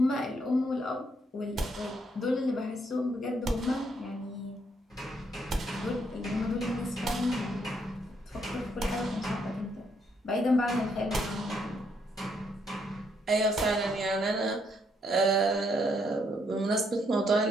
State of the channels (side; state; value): both; normal; correlation 0.73